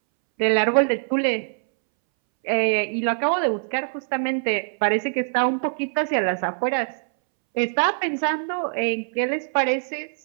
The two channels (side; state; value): left; silent; 63 dB below the other